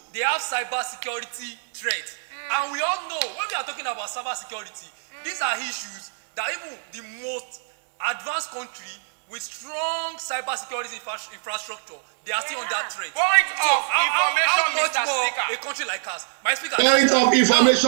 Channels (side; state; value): left; silent; digital silence